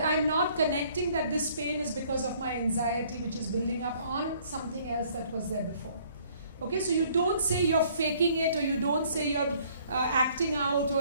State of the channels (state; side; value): inverted; both; correlation -0.60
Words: I'm not connecting that this pain is because of my anxiety, which is building up on something else that was there before. Okay, so you don't say you're faking it, or you don't say you're acting out